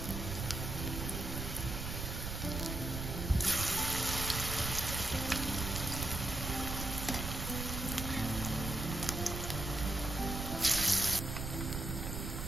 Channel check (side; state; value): right; noise; rumble, 4 dB below the sound